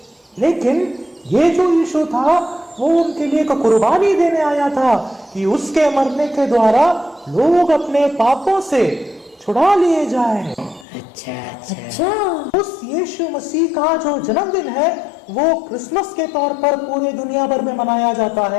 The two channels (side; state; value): right; drops out; at 10.9 s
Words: लेकिन ये जो यीशु था, वो उनके लिए एक कुर्बानी देने आया था कि उसके मरने के द्वारा लोग अपने पापों से छुड़ा लिए जाए। अच्छा अच्छा। उस यीशु मसीह का जो जन्मदिन है वो क्रिसमस के तौर पर पूरे दुनिया भर में मनाया जाता